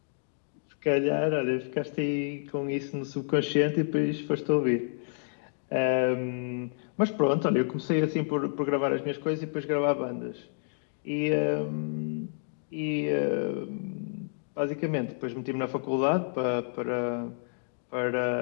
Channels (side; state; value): right; silent; digital silence